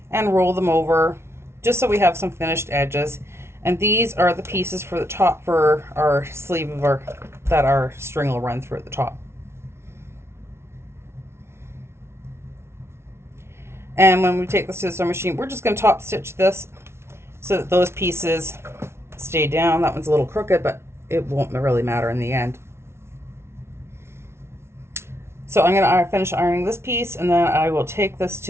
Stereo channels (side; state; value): left; late; 0.12 ms